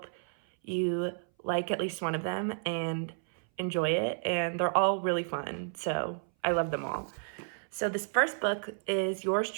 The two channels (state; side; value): silent; left; 57 dB below the other